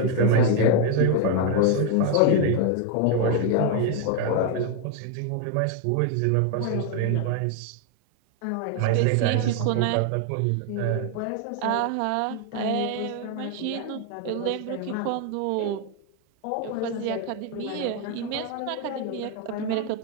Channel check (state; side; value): different; both; correlation 0.01